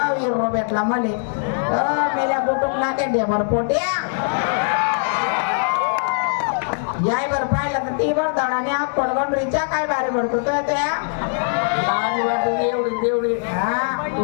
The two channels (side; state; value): right; silent; digital silence